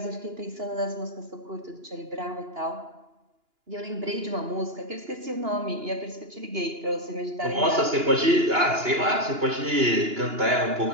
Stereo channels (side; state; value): left; late; 2.9 ms